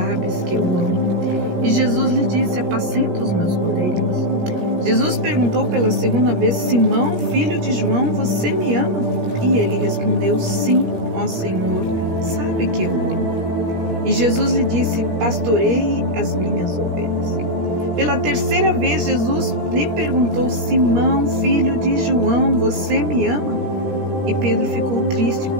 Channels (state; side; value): late; left; 17 ms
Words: que eu amo." E Jesus lhe disse: "Apacenta os meus cordeirinhos." Jesus perguntou pela 2ª vez: "Simão, filho de João, você me ama?" E ele respondeu: "Sim, ó Senhor, sabe que eu amo." E Jesus lhe disse: "Pastoreie as minhas ovelhas." Pela 3ª vez, Jesus lhe perguntou: "Simão, filho de João, você me ama?" E Pedro ficou triste